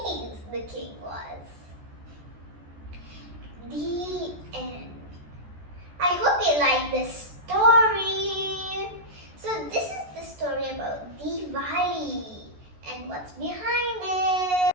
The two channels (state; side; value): late; left; 14 ms